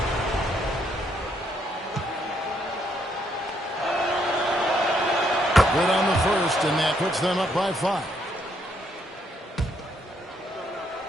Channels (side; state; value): both; normal; correlation 0.73